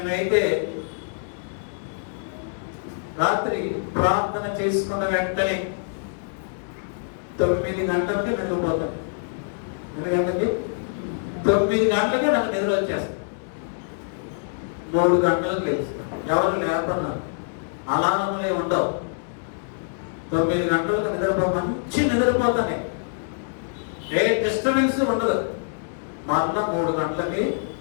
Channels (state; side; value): silent; right; digital silence